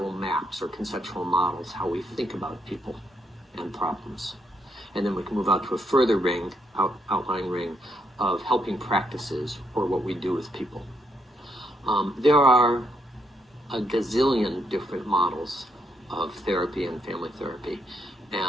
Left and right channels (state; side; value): normal; both; correlation 0.76